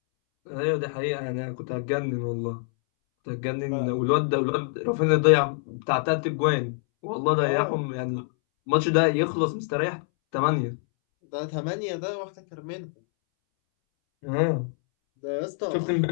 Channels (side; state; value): right; silent; 61 dB below the other